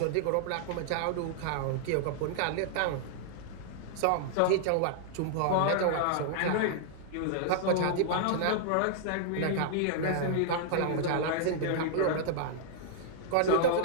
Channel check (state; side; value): different; both; correlation -0.01